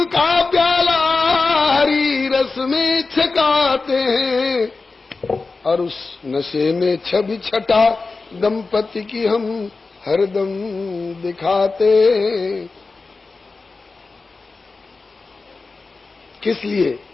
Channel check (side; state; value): right; quieter; 3.9 dB